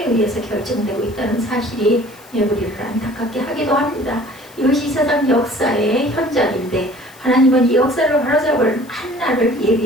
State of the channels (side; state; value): left; noise; hiss, 24 dB below the sound